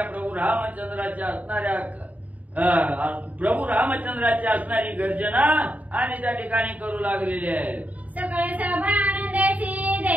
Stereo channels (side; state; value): left; late; 0.073 ms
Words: प्रभू रामचंद्राच्या असणारी गर्जना आणि त्या ठिकाणी करू लागलेली आहे. सकळ सभा आनंदाची